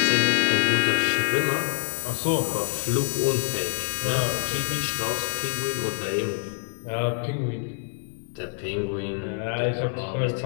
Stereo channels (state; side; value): silent; right; 60 dB below the other